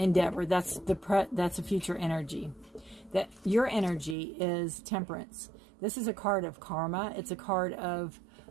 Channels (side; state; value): left; drops out; at 4.2 s